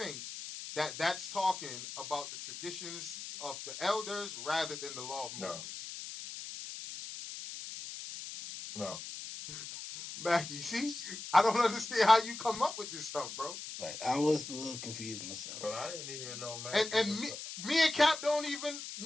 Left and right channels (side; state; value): left; noise; hiss, 9 dB below the sound